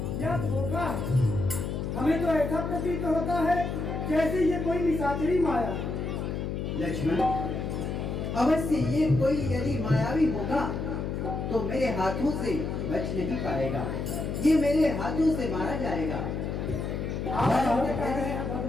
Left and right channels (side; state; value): left; noise; hum, 3 dB below the sound